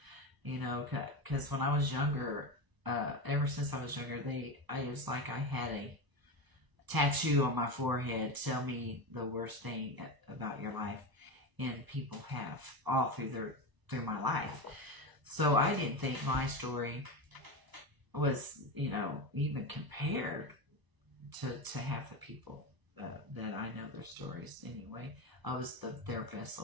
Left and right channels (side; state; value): left; late; 1.0 ms